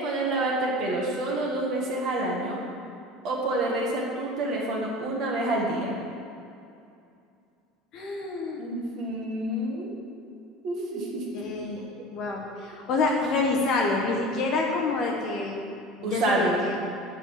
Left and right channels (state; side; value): normal; both; correlation 0.36